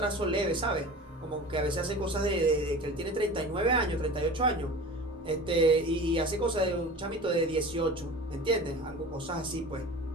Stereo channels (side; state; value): both; normal; correlation 0.37